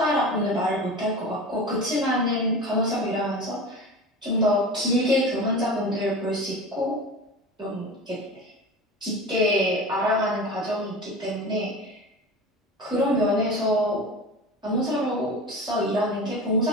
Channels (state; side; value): normal; both; correlation 0.32